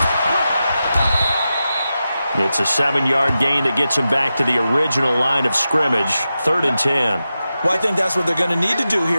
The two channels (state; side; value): inverted; both; correlation -0.91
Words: It's a 7-yard gain that gets him back to the original line of scrimmage, 3rd and 10. Well, I think that's what they're going to need to do